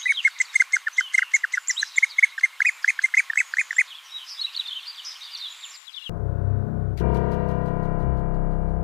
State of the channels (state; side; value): drops out; right; at 5.8 s